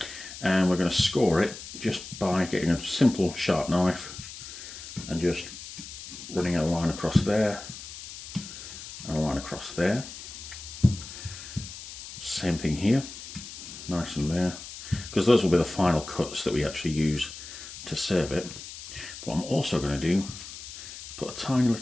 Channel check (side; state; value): left; noise; hiss, 12 dB below the sound